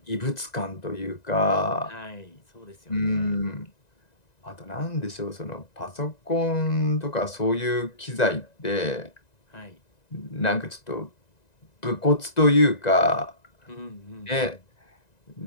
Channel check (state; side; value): late; right; 1.9 ms